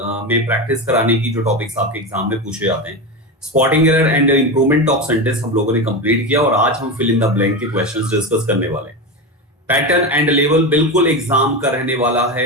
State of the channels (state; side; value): normal; both; correlation 0.19